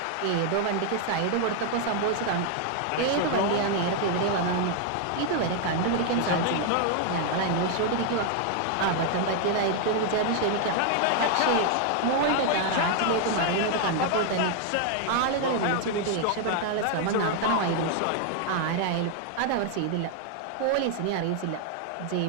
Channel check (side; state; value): both; different; correlation 0.00